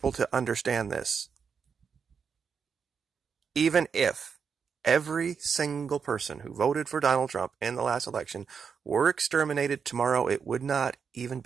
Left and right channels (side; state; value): left; quieter; 6.3 dB